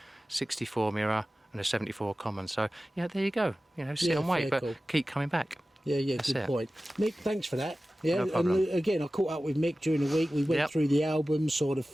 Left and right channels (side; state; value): both; normal; correlation 0.96